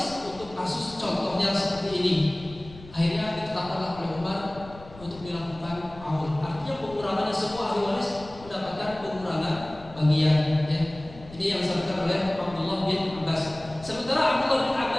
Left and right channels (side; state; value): left; noise; rumble, 18 dB below the sound